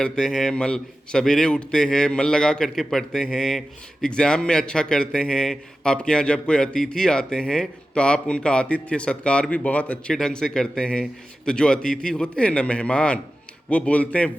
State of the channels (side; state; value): both; normal; correlation 0.94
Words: हैं, सवेरे उठते हैं, मन लगा करके पढ़ते हैं, एग्ज़ाम में अच्छा करते हैं, आपके यहाँ जब कोई अतिथि आते हैं तो आप उनका आतिथ्य सत्कार भी बहुत अच्छे ढंग से करते हैं। तो जो अतिथि होते हैं ना, मेहमान, वो बोलते हैं